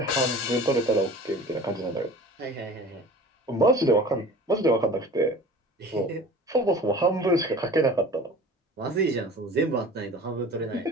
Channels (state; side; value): normal; both; correlation 0.41